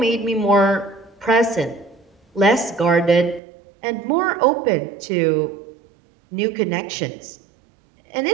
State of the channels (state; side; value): drops out; left; at 3.4 s